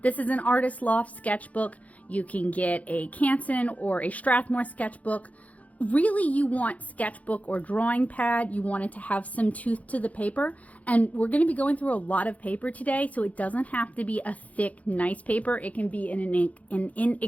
This is an Artist Loft sketchbook. You can get a Canson or a Strathmore sketchbook. Really, you want sketchbook or drawing pad. You want it to have some tooth to the paper. And we're going to be going through a lot of paper today, so it doesn't have to be a thick, nice paper. It can be an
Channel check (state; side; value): late; right; 0.069 ms